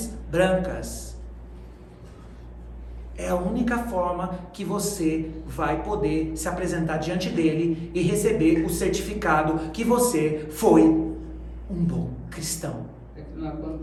brancas. É a única forma que você vai poder se apresentar diante dele e receber o certificado que você foi um bom cristão. É que não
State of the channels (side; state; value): both; identical; correlation 1.00